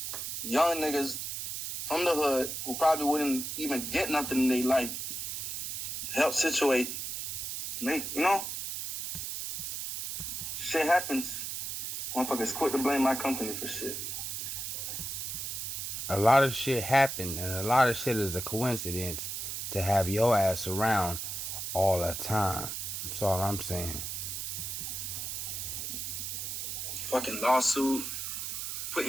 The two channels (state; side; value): noise; right; hiss, 4 dB below the sound